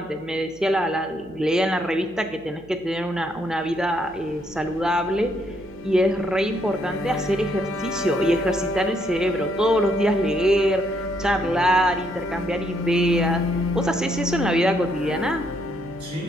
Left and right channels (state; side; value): noise; right; hum, 25 dB below the sound